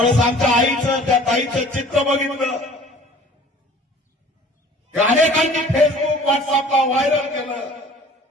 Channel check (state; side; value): normal; both; correlation 0.49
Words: आमच्या आईचं त्या ताईचं चित्र बघितलं ते अनेकांनी फेसबुक व्हॉट्सअपला व्हायरल केलं.